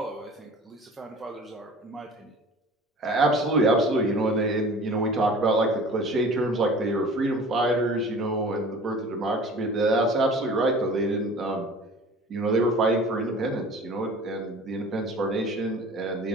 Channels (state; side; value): normal; both; correlation 0.43